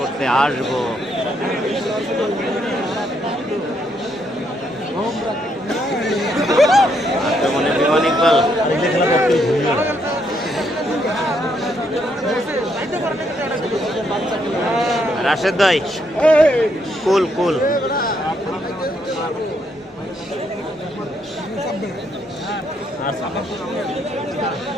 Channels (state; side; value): normal; both; correlation 0.74